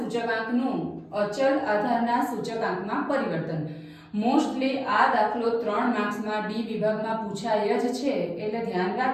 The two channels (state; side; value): identical; both; correlation 1.00